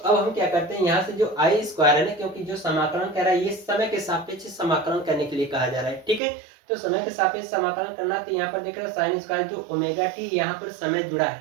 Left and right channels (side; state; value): left; drops out; at 6.2 s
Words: हम क्या करते हैं, यहाँ से जो आई स्क्वायर है ना, क्योंकि जो समाकलन कर रहा है ये समय के सापेक्ष समाकलन करने के लिए कहा जा रहा है। ठीक है, तो समय के सापेक्ष समाकलन करना, तो यहाँ पर देख रहे हैं साइन स्क्वायर जो ओमेगा टी यहाँ पर समय जुड़ा